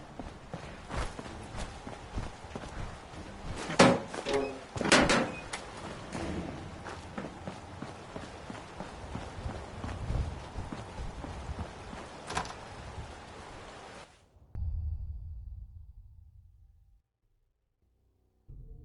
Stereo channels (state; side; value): identical; both; correlation 1.00